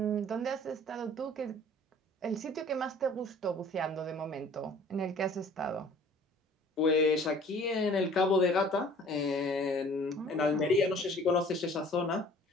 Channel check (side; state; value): both; normal; correlation 0.50